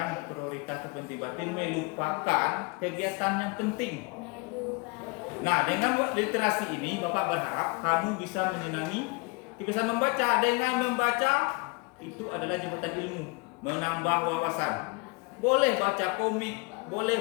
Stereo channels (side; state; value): right; quieter; 28.7 dB